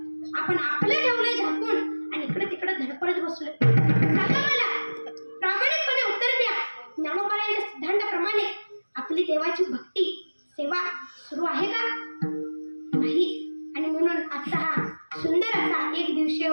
आपण आपलं ठेवलंय झाकून आणि इकडे तिकडे धडपडत बसलोय. सांगा मला, प्रामाणिकपणे उत्तर द्या. ज्ञानोबांच्या सिद्धांताप्रमाणे आपली देवाची भक्ती सेवा सुरू आहे का? नाही. आणि म्हणून आजचा हा सुंदर असा एक दिवसीय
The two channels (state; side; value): inverted; both; correlation -1.00